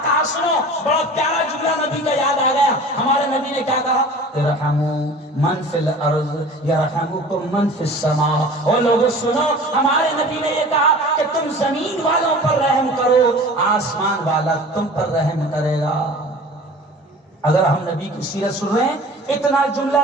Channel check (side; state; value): both; normal; correlation 0.41